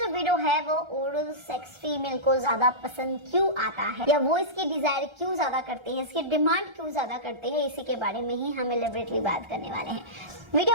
वीडियो है वो ओरल सेक्स फीमेल को ज्यादा पसंद क्यों आता है या वो इसकी डिजायर क्यों ज्यादा करती है, इसकी डिमांड क्यों ज्यादा करती है, इसी के बारे में ही हम एलिबरेटली बात करने वाले हैं।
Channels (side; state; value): left; late; 1.3 ms